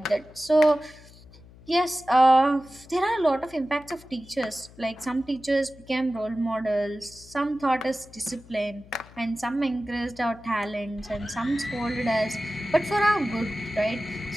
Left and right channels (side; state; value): left; noise; hum, 22 dB below the sound